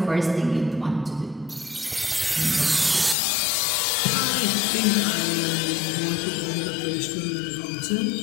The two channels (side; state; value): right; drops out; at 3.2 s